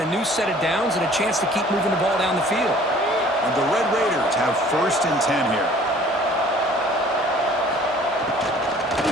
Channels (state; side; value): normal; both; correlation 0.52